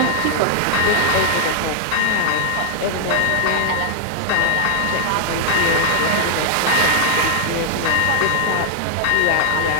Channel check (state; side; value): different; both; correlation 0.00